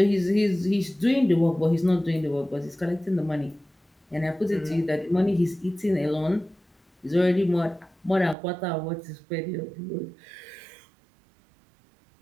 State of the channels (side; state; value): left; drops out; at 8.3 s